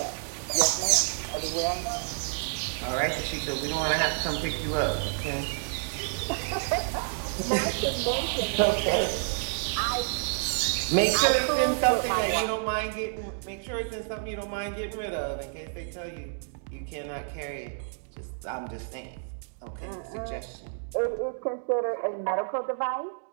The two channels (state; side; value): silent; left; digital silence